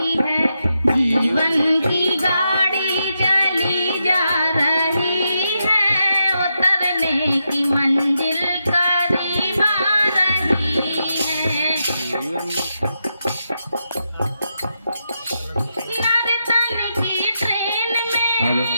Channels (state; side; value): inverted; both; correlation -0.84